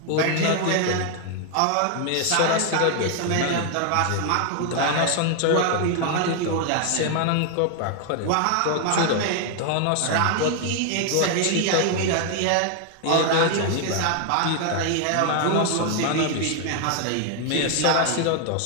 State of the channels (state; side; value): different; both; correlation 0.00